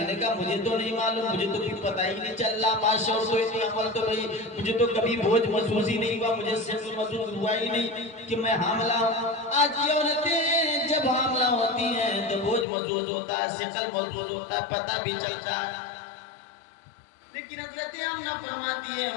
نے کہا مجھے تو نہیں معلوم، مجھے تو کچھ پتہ ہی نہیں چل رہا، ماشاء اللہ اتنی عمل تو بھائی مجھے تو کبھی بوجھ محسوس ہی نہیں ہوا، مجھے صرف محسوس ہوا ہی نہیں کہ میں حاملہ ہوں۔ آج یہ عورتیں جب حاملہ ہوتی ہیں تو بوجھ محسوس ہوتا ہے، ثقل محسوس ہوتا ہے، پتہ بھی چلتا ہے، لیکن حضرت آمنہ فرماتی ہے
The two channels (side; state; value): right; drops out; at 12.7 s